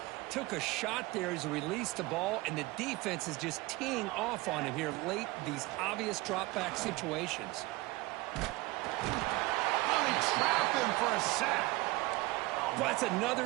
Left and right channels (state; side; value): quieter; left; 21.3 dB